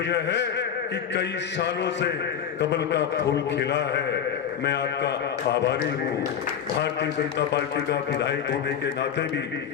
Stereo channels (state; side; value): quieter; right; 8.1 dB